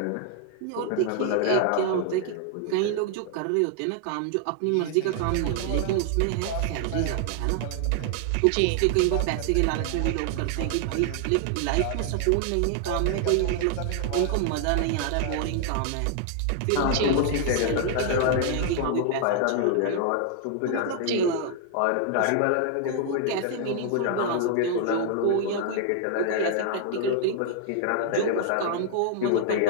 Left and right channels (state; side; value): different; both; correlation 0.00